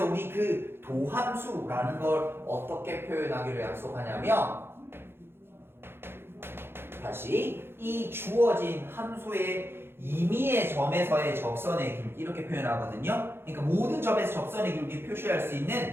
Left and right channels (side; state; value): left; late; 0.11 ms